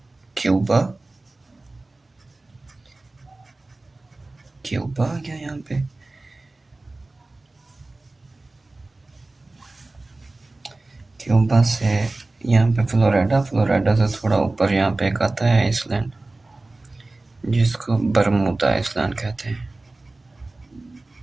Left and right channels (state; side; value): quieter; left; 3.1 dB